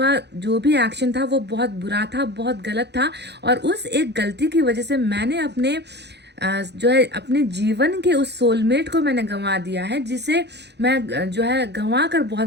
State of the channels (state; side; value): late; left; 0.50 ms